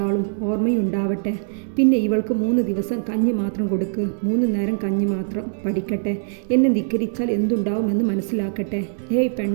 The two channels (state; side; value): silent; left; digital silence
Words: ഓർമ്മയുണ്ടാവട്ടെ. പിന്നെ ഇവൾക്ക് 3 ദിവസം കഞ്ഞി മാത്രം കൊടുക്ക്. 3 നേരം കഞ്ഞി മാത്രം. പഠിക്കട്ടെ. എന്നെ ധിക്കരിച്ചാൽ എന്തുണ്ടാവുമെന്ന് മനസ്സിലാക്കട്ടെ. ഏയ്